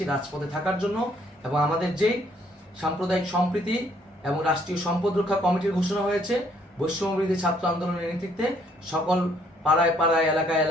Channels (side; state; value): both; normal; correlation 0.66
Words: রাজপথে থাকার জন্য এবং আমাদের যেই সাম্প্রদায়িক সম্প্রীতি এবং রাষ্ট্রীয় সম্পদ রক্ষা কমিটির ঘোষণা হয়েছে বৈষম্যবিরোধী ছাত্র আন্দোলনের নেতৃত্বে, সকল পাড়ায় পাড়ায় এলাকায়